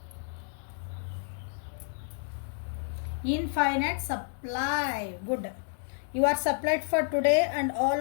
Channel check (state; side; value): silent; right; digital silence